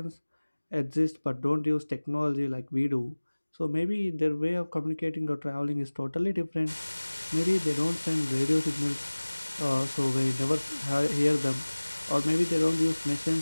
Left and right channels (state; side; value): inverted; both; correlation -1.00